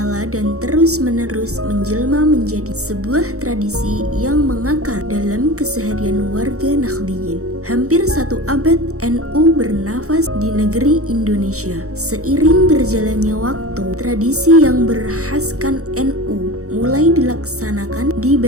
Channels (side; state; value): left; late; 0.65 ms